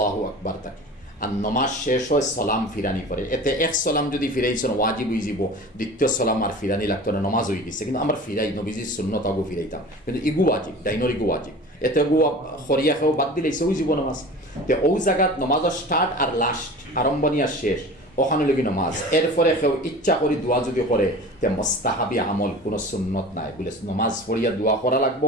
আকবার থাকে, আর নমাজ শেষ হয় সালাম ফিরানি পরে। এতে এক সালাম যদি ফিরাইছেন ওয়াজিব হয়ে যাব, দ্বিতীয় সালাম আর ফিরানি লাগতো না, নমাজ হয়ে গেছে। কিন্তু আমরা ফিরাই নবীজির সুন্নত আগু ফিরাইতাম, কিন্তু ইগু ওয়াজিব, ডাইনর ইগু ওয়াজিব, এতে গু খরিয়া খেয়েও বাদ দিলেছে ওই জীব নমাজ। তো ওই জায়গাত নমাজের স্টার্ট আর লাস্ট, আরম্ভণী আর শেষ, ওখানে লগি নমাজ। এরপরে কেউ ইচ্ছা করি দোয়া যদি করে তে মোস্তাহাবি আমল, কোনো সুন্নত নাই বলে নমাজ পড়িয়া দোয়া করা লাগবো,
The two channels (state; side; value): normal; both; correlation 0.38